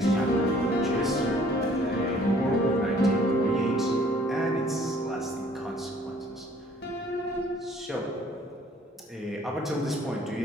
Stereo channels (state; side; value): normal; both; correlation 0.58